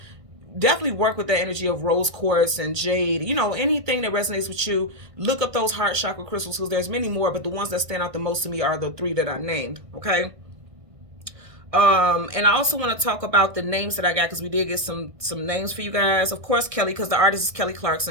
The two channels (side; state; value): left; late; 1.6 ms